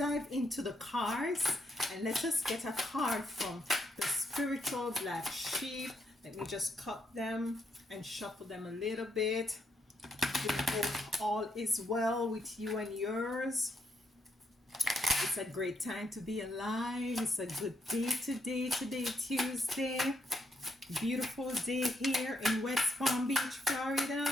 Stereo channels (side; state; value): both; normal; correlation 0.77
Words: into the cards, and let us get a card from the Spiritual Black Sheep. Let me just cut them and shuffle them a little bit. We hope all is well with you and yours. It's a great time to be alive. It's a good day today, Tuesday. Beautiful day here in West Palm Beach,